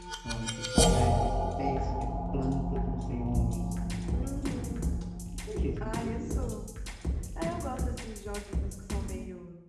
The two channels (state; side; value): identical; both; correlation 1.00